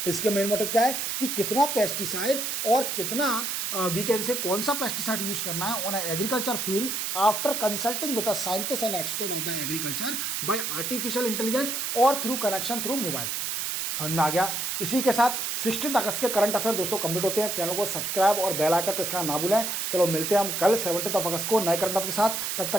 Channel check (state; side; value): noise; right; hiss, 2 dB below the sound